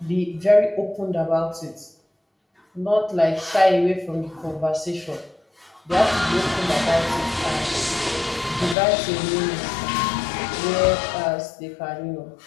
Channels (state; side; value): drops out; right; at 8.8 s